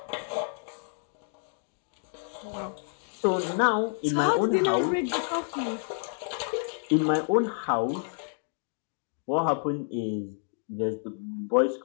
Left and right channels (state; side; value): silent; right; 58 dB below the other